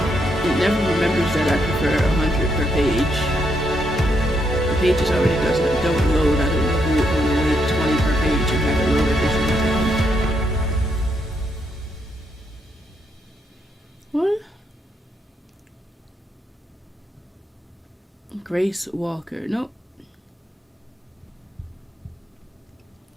It never remembers that I prefer 100 per page. The pages already don't load. I don't know who would want to wait 20 per page and have it load every single time. What? Grace Walker. Nope.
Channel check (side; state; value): both; normal; correlation 0.78